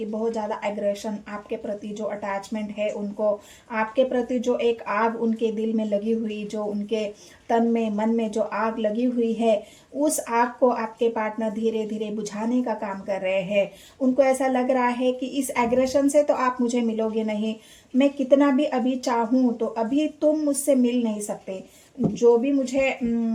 बहुत ज़्यादा एग्रेशन आपके प्रति, जो अटैचमेंट है उनको आपके प्रति, जो एक आग उनके दिल में लगी हुई, जो उनके तन में मन में जो आग लगी हुई है, उस आग को आपके पार्टनर धीरे धीरे बुझाने का काम कर रहे हैं। उनको ऐसा लग रहा है कि इस एग्रेशन से तो आप मुझे मिलोगे नहीं, मैं कितना भी अभी चाहूँ तो अभी तुम मुझसे मिल नहीं सकते। जो भी मुझे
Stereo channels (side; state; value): both; identical; correlation 1.00